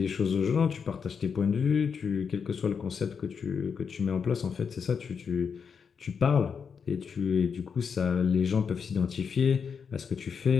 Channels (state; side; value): quieter; right; 6.3 dB